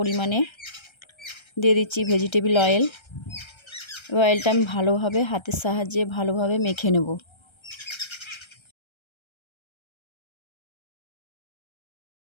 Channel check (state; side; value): late; right; 1.3 ms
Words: দিয়ে দিচ্ছি ভেজিটেবল অয়েল। অয়েলটা আমি ভালোভাবে হাতের সাহায্যে ভালোভাবে মেখে নেব।